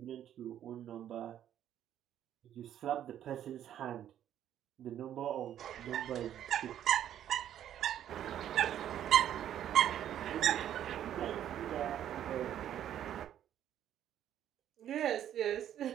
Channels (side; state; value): left; quieter; 10.8 dB